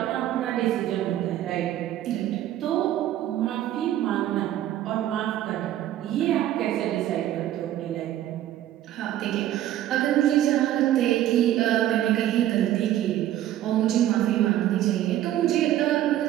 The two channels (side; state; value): left; quieter; 12.7 dB